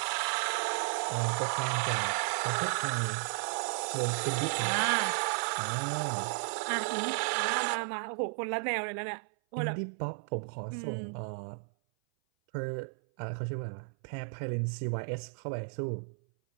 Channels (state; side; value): silent; left; 55 dB below the other